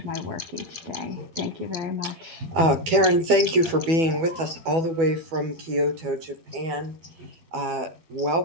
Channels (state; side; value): late; left; 12 ms